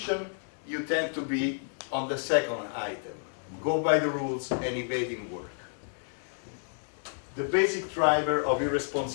you tend to be on the second item. Go by the rules and evading work. The basic driver of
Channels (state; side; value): silent; right; 58 dB below the other